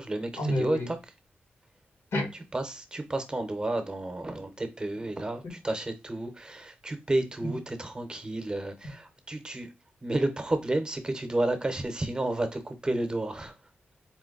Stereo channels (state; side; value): normal; both; correlation 0.94